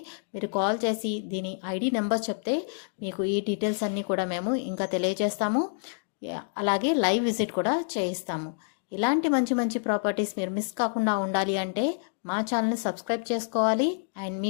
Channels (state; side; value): silent; right; digital silence